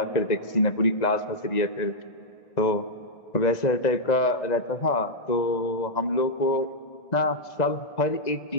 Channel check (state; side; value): late; right; 1.9 ms